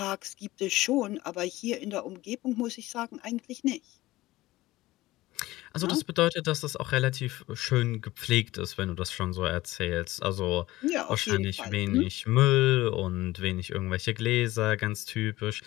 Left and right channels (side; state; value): right; quieter; 17.9 dB